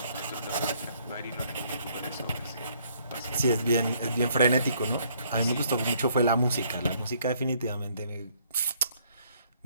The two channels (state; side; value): inverted; both; correlation -0.65